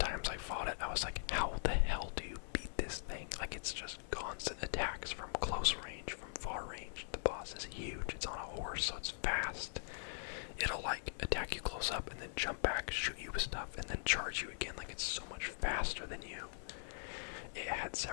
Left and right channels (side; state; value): right; silent; 50 dB below the other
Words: I fought it, I was like, how the hell do you beat this thing? Like it's just constant attacks from close range, from far range. The boss is huge. It's on a horse, so it's fast. It'll like attack you close up and then jump back, shoot you with stuff, and then charge you again. Like it's so much faster than you. It had